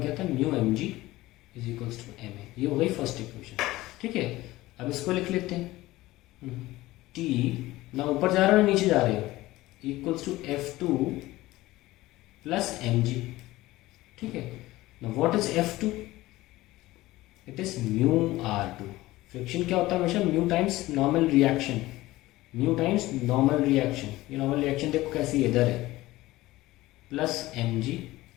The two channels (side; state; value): right; quieter; 17.9 dB